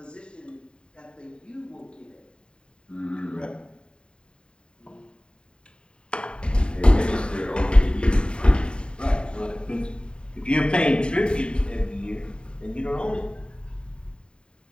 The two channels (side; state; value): right; late; 0.051 ms